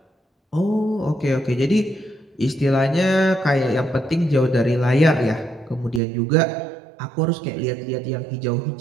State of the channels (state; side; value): drops out; left; at 6.0 s